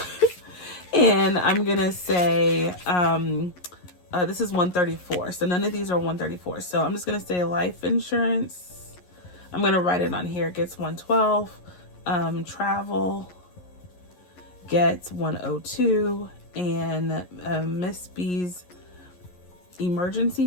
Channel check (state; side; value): late; right; 11 ms